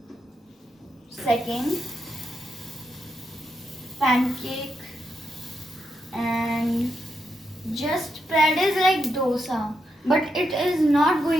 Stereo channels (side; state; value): both; normal; correlation 0.83